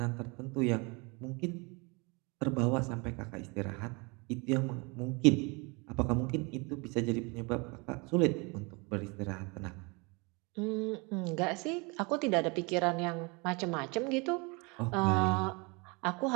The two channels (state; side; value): quieter; left; 28.9 dB